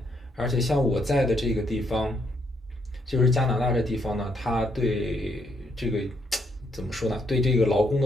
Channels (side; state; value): both; normal; correlation 0.74